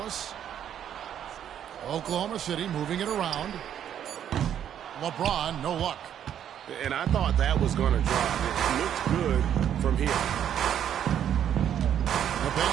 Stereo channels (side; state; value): left; quieter; 9.7 dB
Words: Oklahoma City moving it around. LeBron, no luck. And I thought that was going to drop. It looked good from here. The